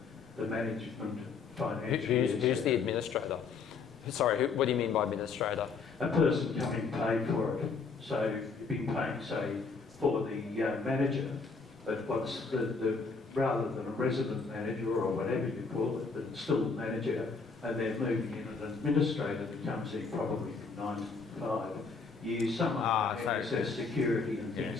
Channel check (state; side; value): quieter; right; 4.8 dB